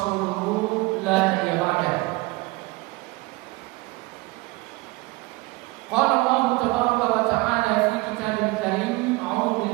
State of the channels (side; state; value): left; quieter; 22.4 dB